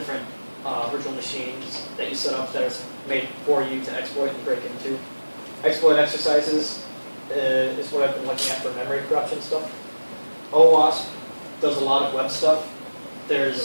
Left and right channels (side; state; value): both; inverted; correlation -1.00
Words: virtual machines that you set up that are made for you to exploit and break into. Exploit exercises is what I've been looking at for memory corruption stuff. OWASP does a lot of web stuff.